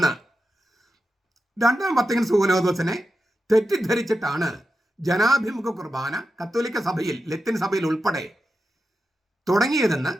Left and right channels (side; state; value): both; normal; correlation 0.90